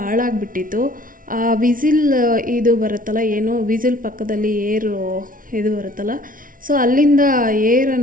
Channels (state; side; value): late; left; 0.39 ms